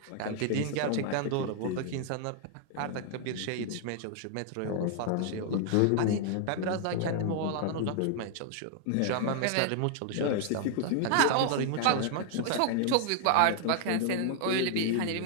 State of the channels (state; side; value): different; both; correlation 0.00